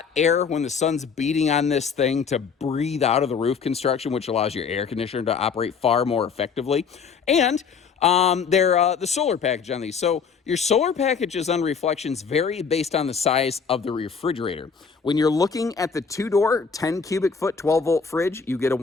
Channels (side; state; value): right; quieter; 5.9 dB